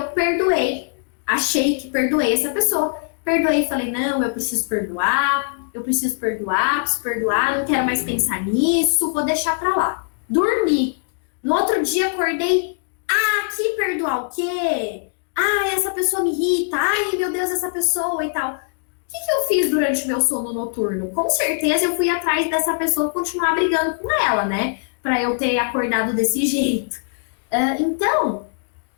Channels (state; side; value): silent; right; 64 dB below the other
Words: perdoei. Achei que perdoei essa pessoa. Perdoei e falei, não, eu preciso perdoar, preciso perdoar, não quero mais pensar nisso, vou deixar pra lá. Dormi. No outro dia acordei, que perdoar o quê? Essa pessoa me irrita, meu Deus, essa pessoa e tal. O que eu fiz durante o meu sono noturno? Com certeza eu fui atrás dessa pessoa continuar brigando com ela, né? Pra eu ter acordado desse jeito. Então,